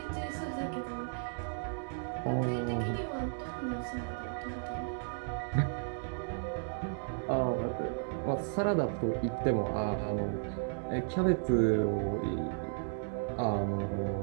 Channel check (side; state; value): left; silent; digital silence